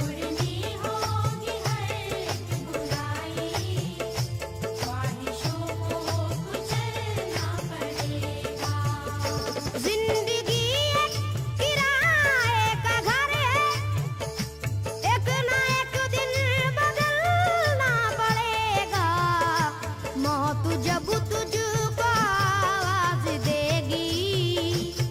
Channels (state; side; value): identical; both; correlation 1.00